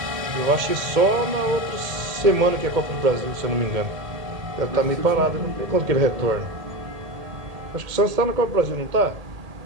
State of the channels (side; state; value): left; late; 1.8 ms